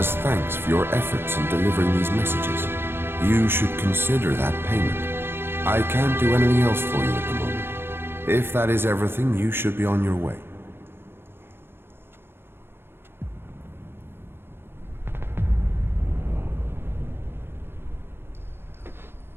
thanks for your efforts in delivering these messages. You should consider that payment. I can't do anything else for you at the moment. If that is everything, you should be on your way.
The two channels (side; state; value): left; late; 0.11 ms